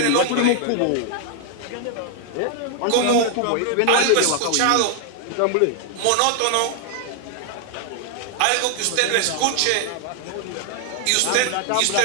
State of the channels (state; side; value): different; both; correlation 0.00